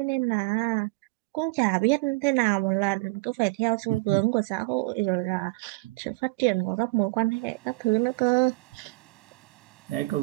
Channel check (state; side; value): quieter; left; 25.9 dB